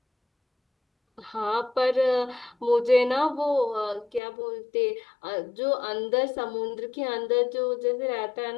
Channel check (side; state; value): right; drops out; at 4.2 s